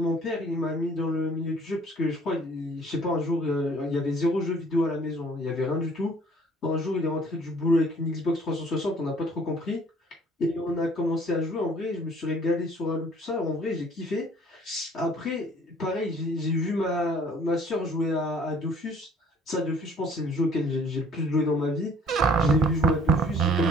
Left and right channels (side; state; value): both; normal; correlation 0.55